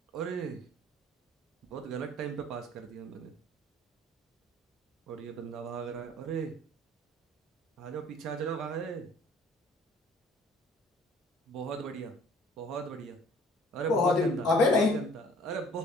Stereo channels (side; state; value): both; normal; correlation 0.54